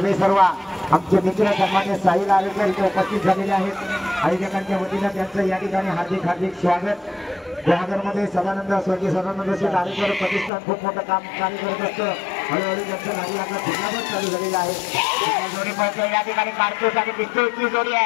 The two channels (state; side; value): drops out; right; at 10.5 s